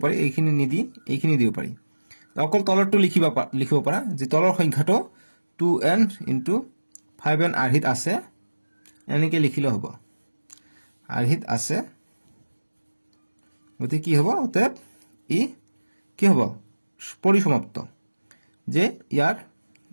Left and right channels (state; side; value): inverted; both; correlation -1.00